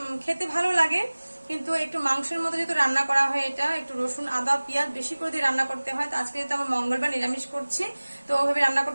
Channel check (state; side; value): inverted; both; correlation -1.00